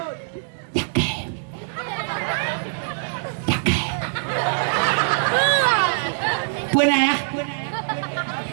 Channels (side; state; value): left; silent; digital silence